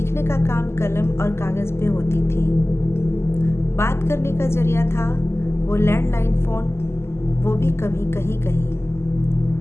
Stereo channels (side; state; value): right; late; 0.12 ms